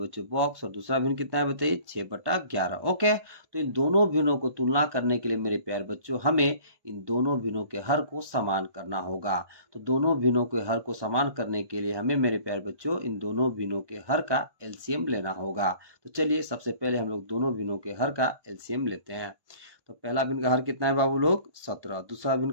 बॉक्स, और दूसरा भिन्न कितना है बताइए 6/11। ओके, तो इन दोनों भिन्नों को तुलना करने के लिए मेरे प्यारे बच्चों हमें इन दोनों भिन्नों के हर को समान करना होगा। तो दोनों भिन्नों के हर को समान करने के लिए हमें मेरे प्यारे बच्चों इन दोनों भिन्नों के हर का एलसीएम लेना होगा। तो चलिए सबसे पहले हम लोग दोनों भिन्नों के हर का एलसीएम लेते हैं। तो पहला भिन्न का हर कितना है बाबू लोग 17, दूसरा भिन्न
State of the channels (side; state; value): left; late; 1.2 ms